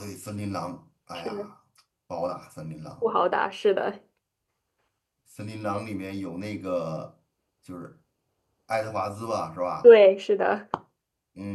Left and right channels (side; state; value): both; identical; correlation 1.00